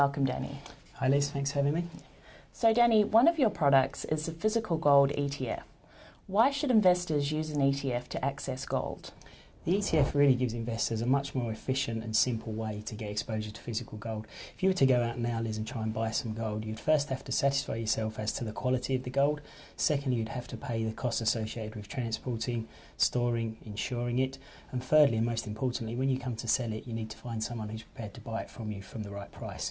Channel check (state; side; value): identical; both; correlation 1.00